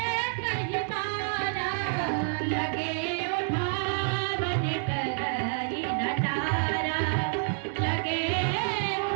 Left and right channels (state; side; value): silent; left; 59 dB below the other